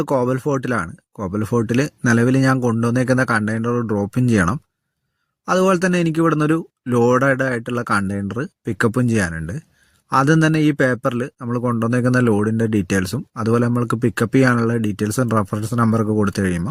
കോബൽ ഫോർട്ടിലാണ്. കോബൽ ഫോർട്ടിൽ നിലവിൽ ഞാൻ കൊണ്ടുവന്നേക്കുന്ന കണ്ടെയ്നർ ഡ്രോപ്പും ചെയ്യണം. അതുപോലെ തന്നെ എനിക്ക് ഇവിടുന്ന് ഒരു ലോഡഡ് ആയിട്ടുള്ള കണ്ടെയ്നർ പിക്കപ്പും ചെയ്യാനുണ്ട്. ആദ്യം തന്നെ ഈ പേപ്പറിൽ നമ്മൾ കൊണ്ടുവന്നേക്കുന്ന ലോഡിൻ്റെ ഡീറ്റെയിൽസും അതുപോലെ നമ്മൾക്ക് പിക്കപ്പ് ചെയ്യാനുള്ള ഡീറ്റെയിൽസും റെഫറൻസ് നമ്പറൊക്കെ കൊടുത്തു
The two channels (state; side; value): identical; both; correlation 1.00